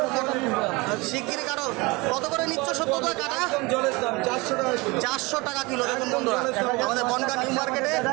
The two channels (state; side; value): quieter; left; 24.6 dB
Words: কাটো। শিগগিরি কাটো। কত করে নিচ্ছ সত্যতা কাটা? একদম জলের দাম 400 টাকা কিলো। 400 টাকা কিলো। দেখুন বন্ধুরা, আমাদের বনগা নিউ মার্কেটে